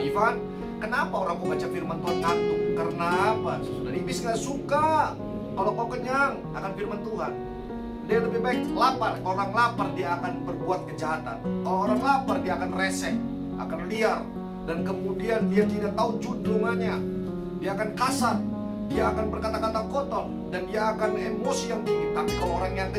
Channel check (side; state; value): both; identical; correlation 1.00